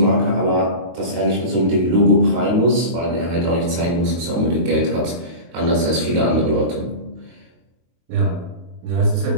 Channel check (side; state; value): left; late; 23 ms